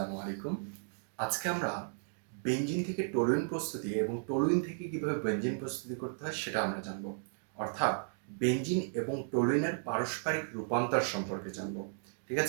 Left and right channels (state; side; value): silent; left; digital silence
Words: আলাইকুম। আজকে আমরা বেনজিন থেকে টলুইন প্রস্তুতি এবং টলুইন থেকে কিভাবে বেনজিন প্রস্তুতি করতে হয় সেটা আমরা জানব। অর্থাৎ বেনজিন এবং টলুইনের পারস্পরিক রূপান্তর সম্পর্কে জানব। ঠিক